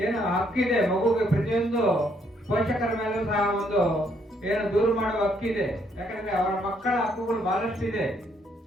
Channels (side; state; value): both; normal; correlation 0.70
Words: ಏನು ಹಕ್ಕಿದೆ, ಮಗುಗೆ ಪ್ರತಿಯೊಂದು ಪೋಷಕರ ಮೇಲೂ ಸಹ ಒಂದು ಏನು ದೂರ ಮಾಡುವ ಹಕ್ಕಿದೆ. ಯಾಕಂದ್ರೆ ಅವರ ಮಕ್ಕಳ ಹಕ್ಕುಗಳು ಬಹಳಷ್ಟು ಇದೆ.